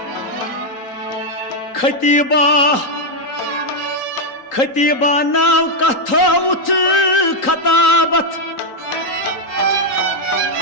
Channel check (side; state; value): right; late; 3.8 ms